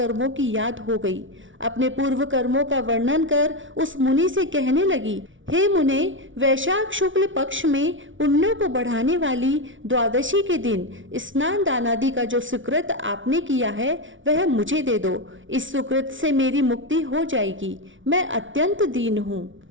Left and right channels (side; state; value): left; late; 0.56 ms